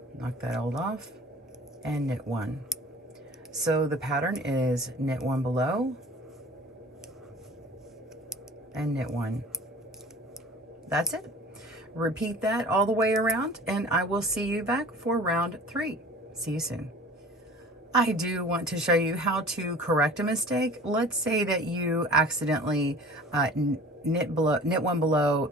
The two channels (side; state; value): both; normal; correlation 0.43